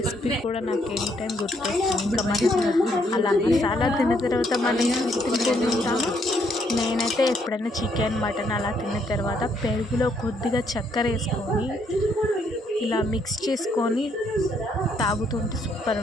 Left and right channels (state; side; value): normal; both; correlation 0.71